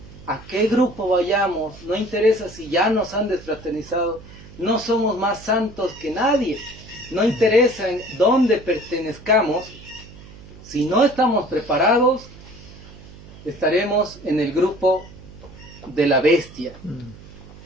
a qué grupo vayamos, no interesa si ya nos han desfraternizado, no somos más santos que nadie, no interesa en dónde pertenezcamos, si no estamos preparados, estaremos en el grupo de la bestia.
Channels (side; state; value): right; noise; hum, 19 dB below the sound